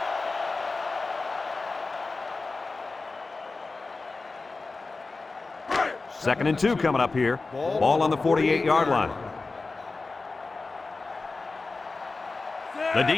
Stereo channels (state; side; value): quieter; right; 3.7 dB